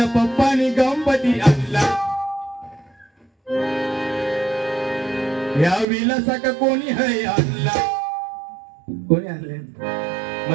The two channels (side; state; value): left; drops out; at 5.9 s